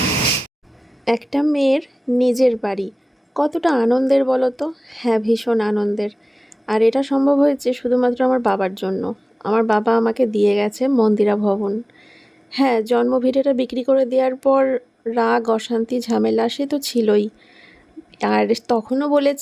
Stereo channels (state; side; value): normal; both; correlation 0.98